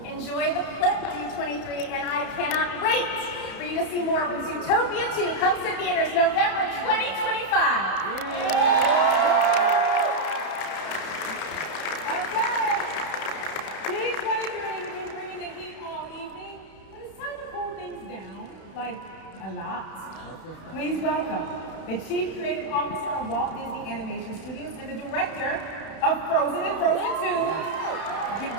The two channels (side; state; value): right; late; 32 ms